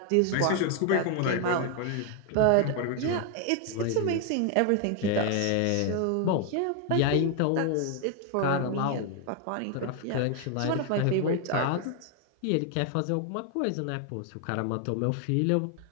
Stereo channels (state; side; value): different; both; correlation 0.00